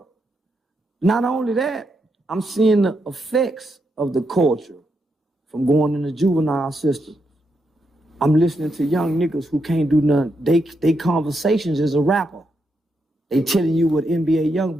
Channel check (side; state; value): both; normal; correlation 0.82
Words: Not only that, I'm seeing the effects of the culture from going in the juvenile system. I'm listening to young niggas who can't do nothing. They conversations as a rapper. They telling you what NBA